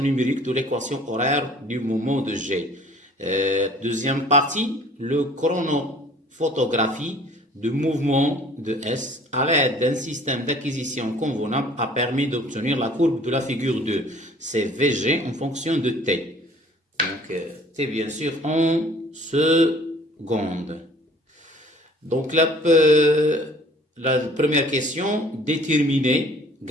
de l'équation horaire du mouvement de G. Deuxième partie, le chronophotographie du mouvement de S à l'aide d'un système d'acquisition convenable a permis d'obtenir la courbe de la figure 2. C'est VG en fonction de T. Donc, T bien sûr en secondes. Donc, la première question, déterminer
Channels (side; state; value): both; normal; correlation 0.52